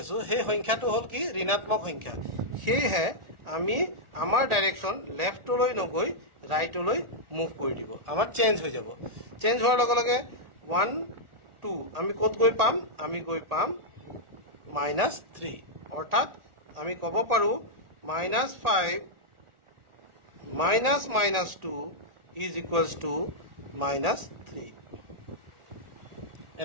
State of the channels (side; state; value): left; late; 1.4 ms